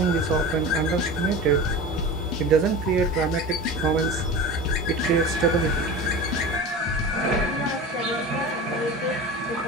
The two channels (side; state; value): both; normal; correlation 0.31